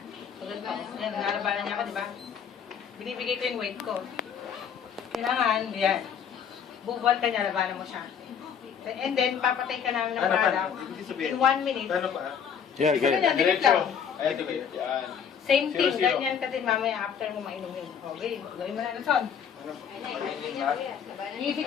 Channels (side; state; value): right; quieter; 7.5 dB